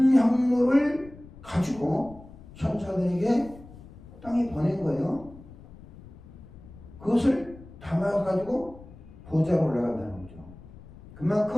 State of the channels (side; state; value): left; noise; rumble, 19 dB below the sound